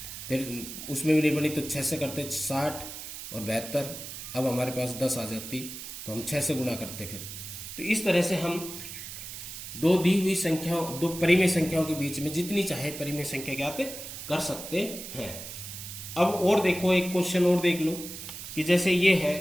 फिर उसमें भी नहीं बनी तो 6 से करते 60 और 72, अब हमारे पास 10 आ जाती, तो हम 6 से गुणा करते फिर। तो इस तरह से हम दो दी हुई संख्याओं, 2 परिमेय संख्याओं के बीच में जितनी चाहे परिमेय संख्या ज्ञात कर सकते हैं। अब और देखो, एक क्वेश्चन और देख लो कि जैसे ये है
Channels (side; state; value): right; noise; hiss, 10 dB below the sound